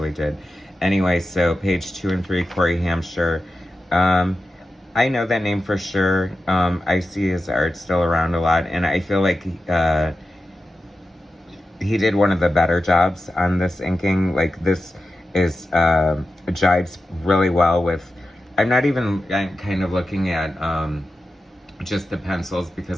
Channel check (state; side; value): normal; both; correlation 0.92